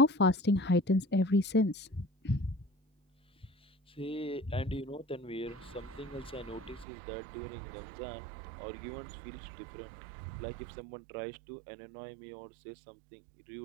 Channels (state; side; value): drops out; left; at 6.9 s